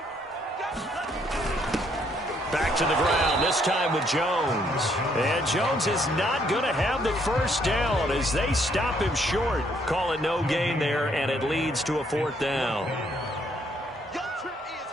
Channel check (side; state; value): both; normal; correlation 0.69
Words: Back to the ground, this time with Jones. And Jones is not going to have the first down as they stop him short. Call it no gain there, and it leads to a 4th down. Your trip is